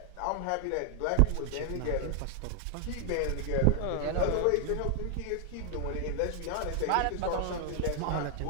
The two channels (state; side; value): different; both; correlation 0.00